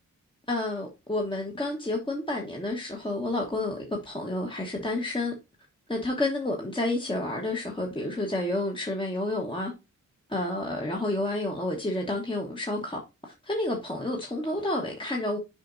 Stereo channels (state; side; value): normal; both; correlation 0.51